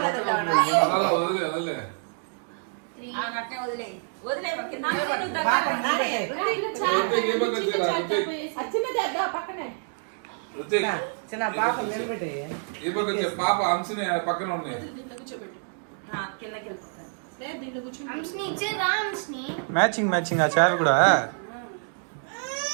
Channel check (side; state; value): left; silent; 60 dB below the other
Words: చిన్న పాప నిలబెట్టి పాప అంశని పక్కన ఉన్నాయి మ్యాచింగ్ మ్యాచింగ్ ఆ చారు కూడా